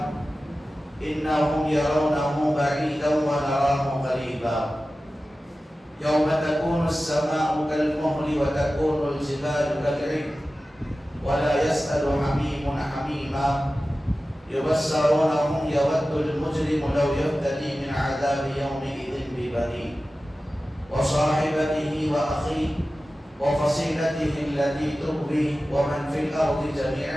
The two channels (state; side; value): normal; both; correlation 0.95